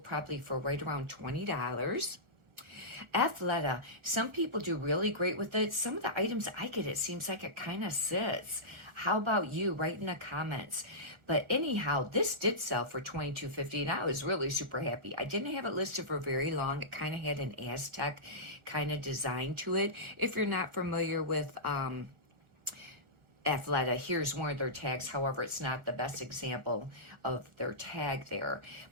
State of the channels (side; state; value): left; late; 1.4 ms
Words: probably for right around $20. Athleta, some people do really great with it. Some of the items I get, it seems like it kind of sits. How about you? Write in the comments. But anyhow, this did sell for $22.50, and I was really super happy. I didn't have it listed for very long. It kind of had an Aztec kind of design to it. If you're not familiar with Athleta, here's one of their tags. However, it's not the best example of their tag there.